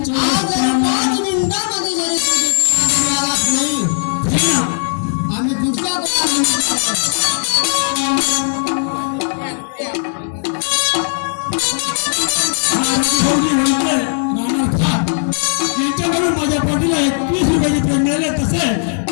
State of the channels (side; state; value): right; silent; digital silence